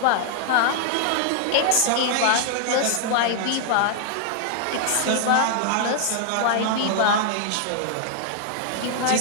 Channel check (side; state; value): both; different; correlation 0.00